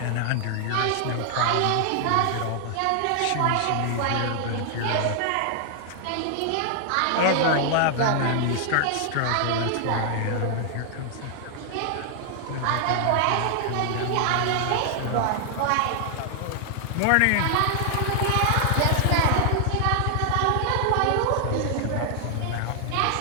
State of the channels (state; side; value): different; both; correlation 0.00